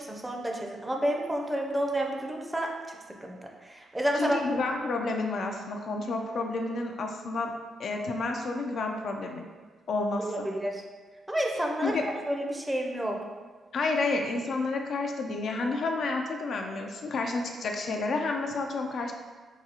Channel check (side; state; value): both; normal; correlation 0.81